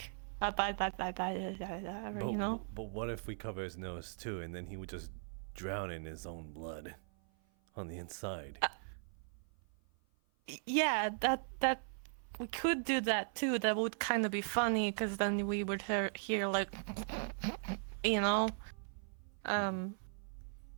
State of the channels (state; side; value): silent; left; 52 dB below the other